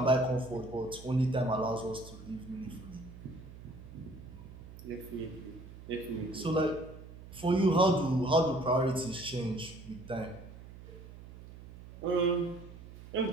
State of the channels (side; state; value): right; noise; hum, 16 dB below the sound